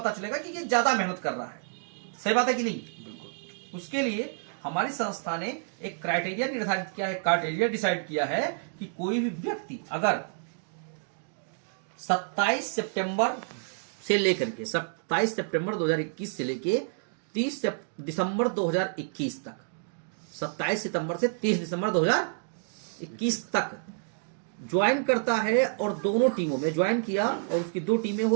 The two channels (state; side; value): silent; left; digital silence